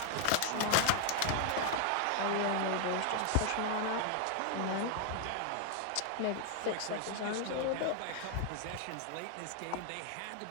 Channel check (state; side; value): different; both; correlation 0.00